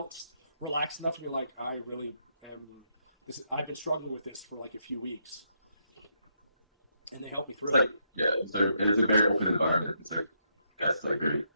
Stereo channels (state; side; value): inverted; both; correlation -0.78